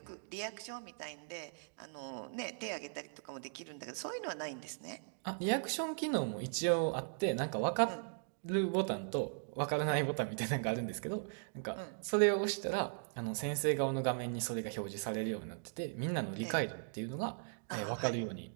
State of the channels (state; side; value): silent; left; digital silence